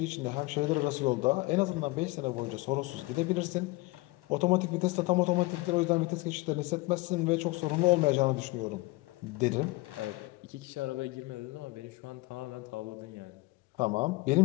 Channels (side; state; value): right; quieter; 22.3 dB